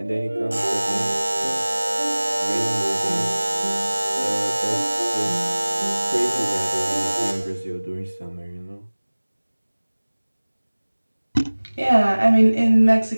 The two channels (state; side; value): inverted; both; correlation -1.00